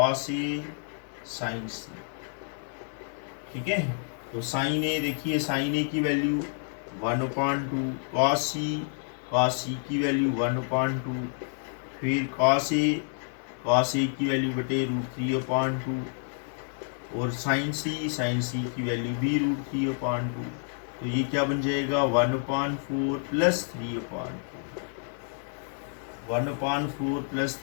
A sign सी. ठीक है, तो साइन ए देखिए, साइन ए की वैल्यू 1/2, कॉस सी की वैल्यू 1/2, फिर कॉस ए की वैल्यू बटे √3/2, और साइन सी की वैल्यू भी √3/2. तो ये क्या बन जाएगा, 1/4 प्लस 3/4. 1/4 plus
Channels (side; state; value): right; silent; digital silence